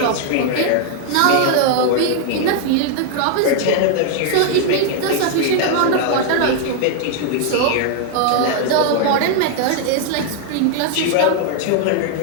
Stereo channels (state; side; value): different; both; correlation 0.00